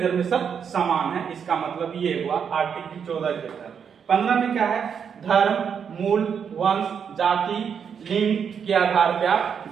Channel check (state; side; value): quieter; left; 7.2 dB